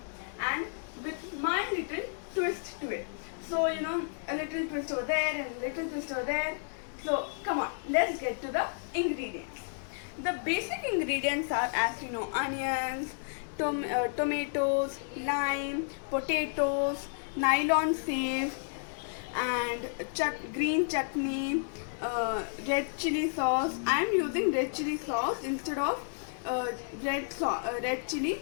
and with my little twist to it. So a little twist over there and a little twist over there. So come on, let's get to the ingredients. The basic ingredients are, as you know, onions, tomatoes, lime, potatoes, nylon save, and green chutney, red chili sauce. I am using red chili sauce instead of red chili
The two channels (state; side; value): silent; right; digital silence